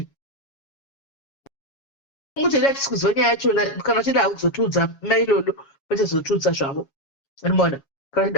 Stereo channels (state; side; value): late; right; 7.3 ms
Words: mutenda tisi kuziva nyaya yachona kana uchida kuzotiudza mailolo vachazotiudza zvavo animona kana